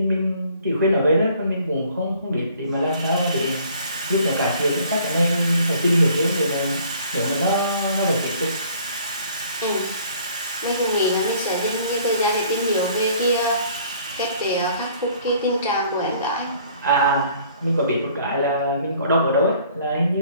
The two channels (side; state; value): both; inverted; correlation -0.57